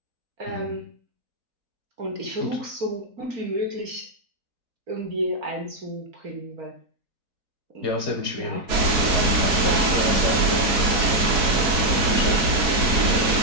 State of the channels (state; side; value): late; left; 4.0 ms